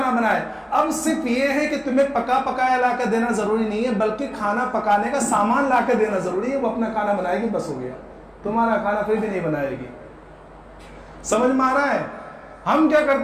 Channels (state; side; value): identical; both; correlation 1.00